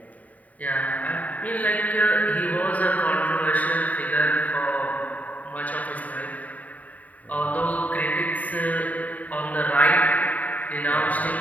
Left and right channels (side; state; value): right; late; 0.072 ms